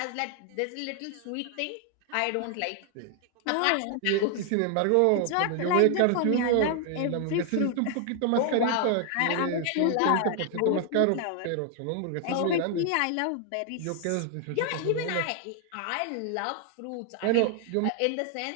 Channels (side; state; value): both; different; correlation 0.00